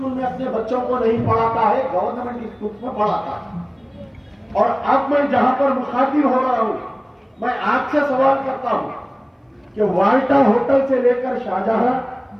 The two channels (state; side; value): identical; both; correlation 1.00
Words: में अपने बच्चों को नहीं पढ़ाता है, गवर्नमेंट स्कूल्स में पढ़ाता है। और अब मैं जहां पर मुखातिब हो रहा हूं, मैं आपसे सवाल करता हूं कि वाल्टा होटल से लेकर